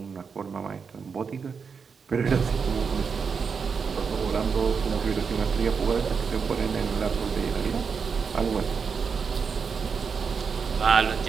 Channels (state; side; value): quieter; left; 5.8 dB